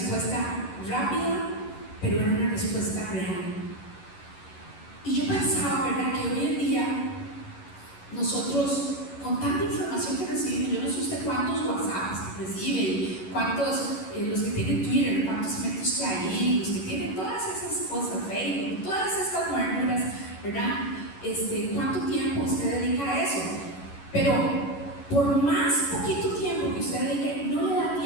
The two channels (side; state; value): right; late; 11 ms